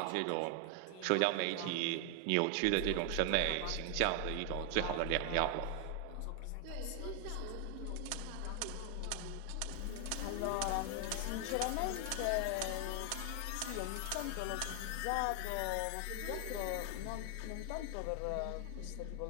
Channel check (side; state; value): both; different; correlation 0.00